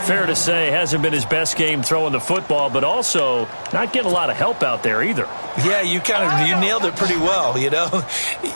to say, hasn't been his best game throwing the football, but also not getting a lot of help out there either. Yeah, you nailed it pretty well, you know.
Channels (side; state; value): both; inverted; correlation -1.00